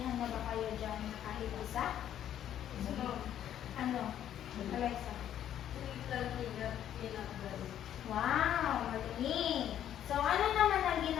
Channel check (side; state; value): right; quieter; 10.6 dB